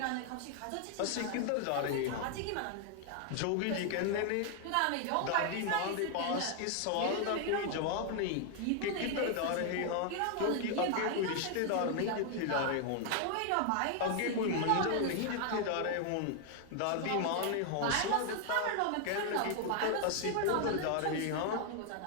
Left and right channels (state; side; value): different; both; correlation 0.00